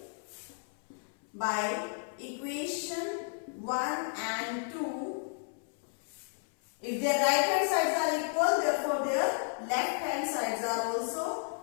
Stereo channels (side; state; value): right; silent; 56 dB below the other